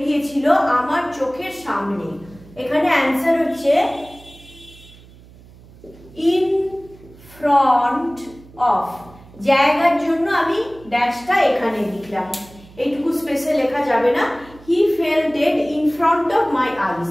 গিয়েছিল আমার চোখের সামনে। এখানে অ্যান্সার হচ্ছে in front of। জায়গার জন্য আমি ড্যাশটা এখানে লিখলাম, এইটুকু স্পেসে লেখা যাবে না। he fell dead in front of my eyes.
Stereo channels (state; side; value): noise; right; hum, 23 dB below the sound